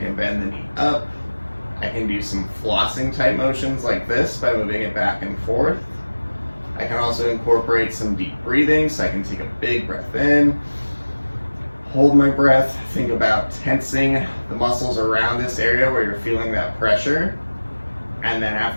bend the knee up. I can do some flossing type motions like this by moving it back and forth. I can also incorporate some deep breathing, so I can take a big breath in, hold my breath, think about tensing the muscles around this area where you're feeling that pressure. And then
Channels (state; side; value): inverted; both; correlation -1.00